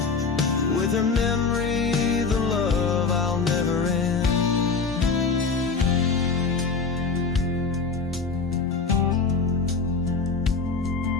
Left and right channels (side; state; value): right; quieter; 4.7 dB